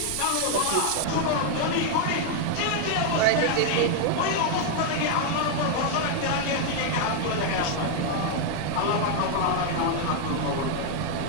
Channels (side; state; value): both; different; correlation 0.00